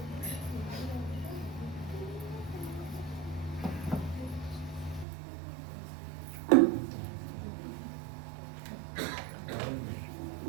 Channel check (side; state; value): left; drops out; at 5.1 s